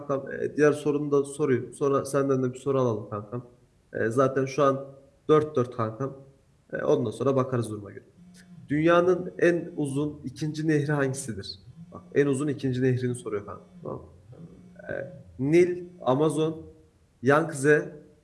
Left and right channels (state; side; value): identical; both; correlation 1.00